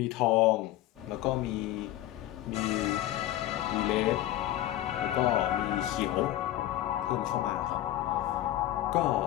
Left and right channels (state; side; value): quieter; right; 14.1 dB